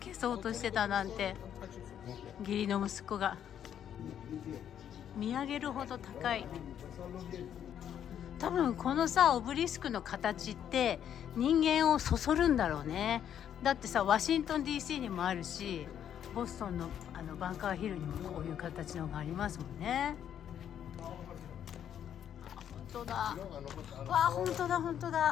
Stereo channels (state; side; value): quieter; right; 9.5 dB